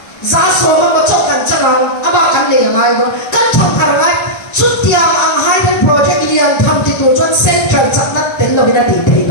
giá số mà có chỗ cắn chân ông aba cắn liền ngay đó cắn thằng thằng ngay chút tiền ang hai bên project liền tham đi tu cho central chắc nát tên lo bên đó đi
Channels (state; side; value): late; right; 1.3 ms